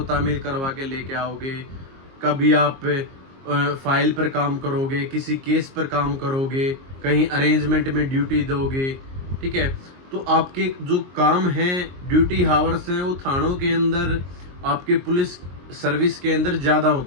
तामील करवा के लेके आओगे, कभी आप फाइल पर काम करोगे, किसी केस पर काम करोगे, कहीं अरेंजमेंट में ड्यूटी दोगे, ठीक है, तो आपके जो काम हैं, ड्यूटी हावर्स हैं, वो थानों के अंदर, आपके पुलिस सर्विस के अंदर ज़्यादा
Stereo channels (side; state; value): left; late; 22 ms